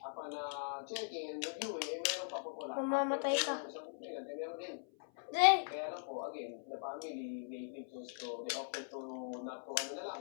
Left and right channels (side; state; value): right; silent; 51 dB below the other